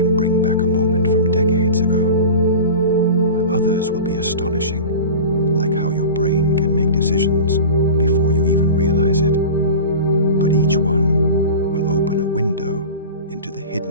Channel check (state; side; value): inverted; both; correlation -0.33